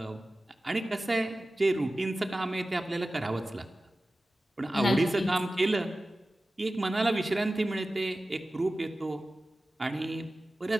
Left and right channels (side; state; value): both; normal; correlation 0.96